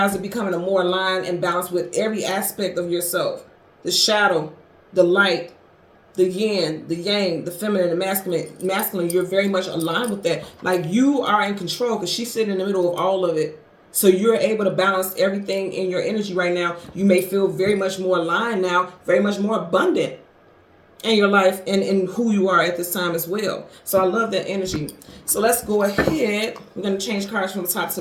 are becoming a more aligned and balanced with every aspect of yourself. The shadow, the light, the yin, the yang, the feminine, the masculine, you're very much aligned with that. Like, you are in control because she's sitting in the middle of all of it. So you're able to balance everything in your energy right now. You may feel very much more aligned now, very much more abundant in your life and in who you are at this time as well. So I love that energy. So let's go ahead. We're going to change cards from the top to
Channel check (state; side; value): identical; both; correlation 1.00